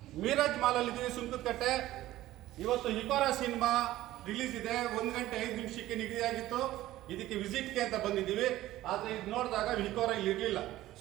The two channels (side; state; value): left; quieter; 15.4 dB